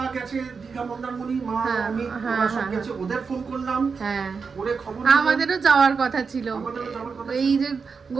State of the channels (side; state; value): left; quieter; 5.3 dB